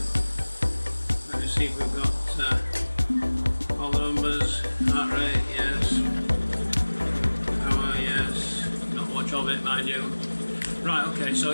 Let me see if we've got all the numbers. Heart rate, yes. Power, yes. Not much of it, mind you. Right, okay, so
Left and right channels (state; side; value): inverted; both; correlation -1.00